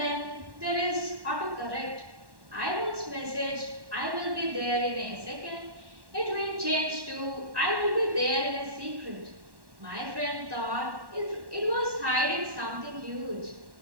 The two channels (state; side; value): late; left; 1.1 ms